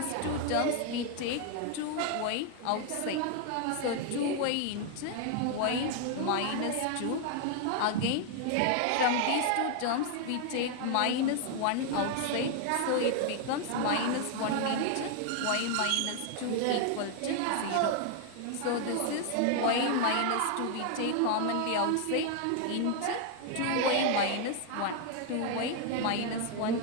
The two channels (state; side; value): different; both; correlation 0.00